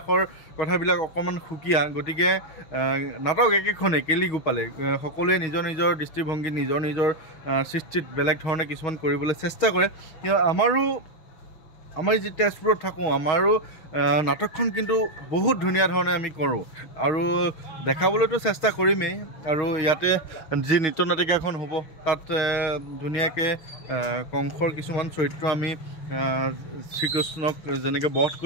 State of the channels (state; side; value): late; right; 6.3 ms